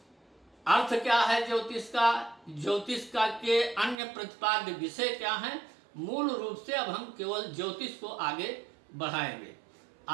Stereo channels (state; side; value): drops out; left; at 4.0 s